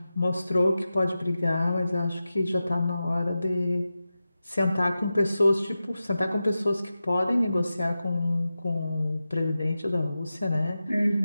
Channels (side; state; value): both; inverted; correlation -0.93